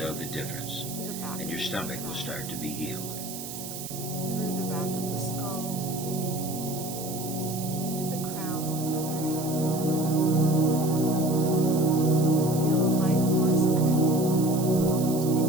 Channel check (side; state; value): right; noise; hiss, 10 dB below the sound